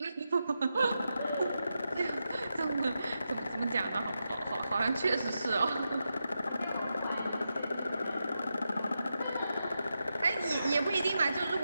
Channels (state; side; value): inverted; both; correlation -0.87